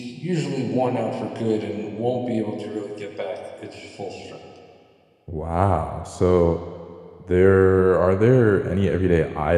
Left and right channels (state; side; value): identical; both; correlation 1.00